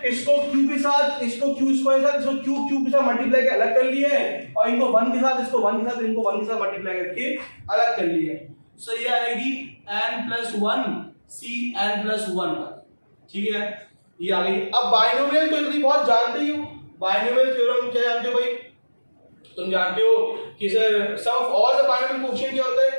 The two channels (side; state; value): both; inverted; correlation -1.00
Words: इसको q के साथ इसको q स्क्वायर के साथ इसको q क्यूब के साथ मल्टीप्लाई करके अलग कर लिए और इनको 1 के साथ इसको 1 के साथ इनको 1 के साथ मल्टीप्लाई करके अलग कर लिए। सो ये आएगी n plus 1 c n plus 1 तक, ठीक है ये आ गई। अब बाइनोमियल तो इतनी बहुत जानते ही हो, बाइनोमियल थ्योरम क्या जानते हो भाई, तुम जानते हो कि sir sum of all the binomial coefficient क्या होता